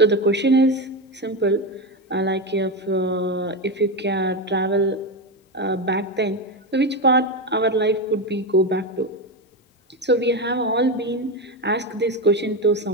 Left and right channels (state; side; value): normal; both; correlation 0.14